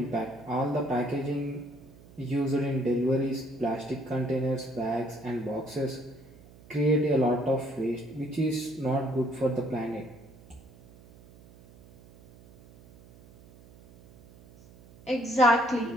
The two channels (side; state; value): right; noise; hum, 23 dB below the sound